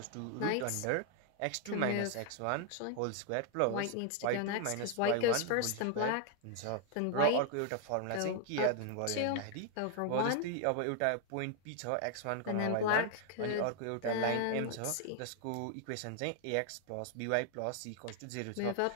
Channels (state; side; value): different; both; correlation 0.00